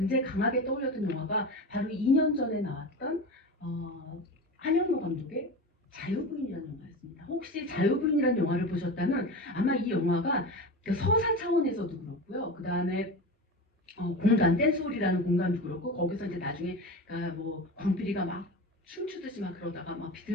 강하게 떠올렸던 영화가 바로 2년 전에 나왔던 한영로 감독의 자유부인이라는 영화였습니다. 혹시 자유부인이라는 영화를 보셨다면 아마 이 영화가 서사 차원에서도 그렇고요. 그 다음에 공간, 댄스홀이라는 공간도 그렇고, 거기서 이제 나중에, 그러니까 뭐, 광필이가 막 춤추듯이 막 그러다가 막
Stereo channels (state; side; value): normal; both; correlation 0.27